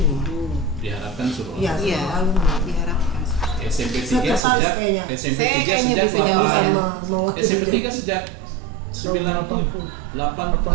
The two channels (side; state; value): left; drops out; at 4.4 s